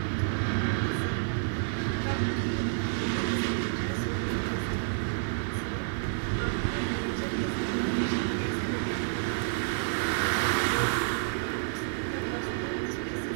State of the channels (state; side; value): silent; left; digital silence